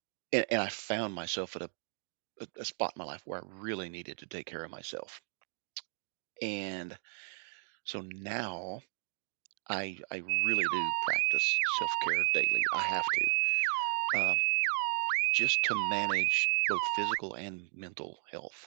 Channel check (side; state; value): left; silent; 55 dB below the other